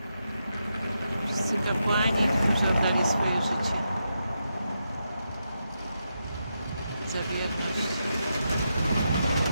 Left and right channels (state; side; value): inverted; both; correlation -0.85